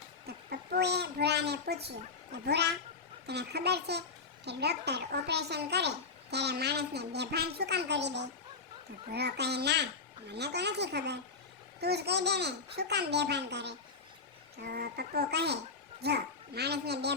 તો પપ્પુએ ભૂરાને પૂછ્યું કે ભૂરા, તને ખબર છે કે ડૉક્ટર ઓપરેશન કરે ત્યારે માણસને બેભાન શું કામ કરી દે? તો ભૂરો કહે, ના, મને તો નથી ખબર, તું જ કહી દે ને શું કામ બેભાન કરે? તો પપ્પુ કહે, જો માણસને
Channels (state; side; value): quieter; right; 4.6 dB